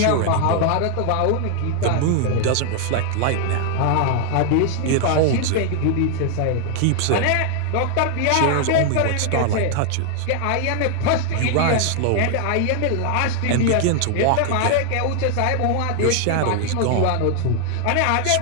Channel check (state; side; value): different; both; correlation 0.00